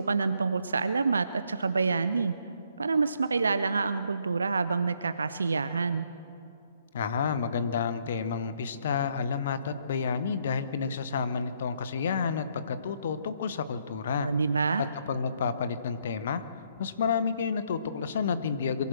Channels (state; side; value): inverted; both; correlation -0.70